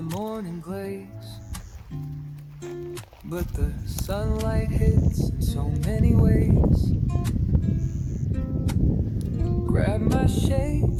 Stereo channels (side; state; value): both; identical; correlation 1.00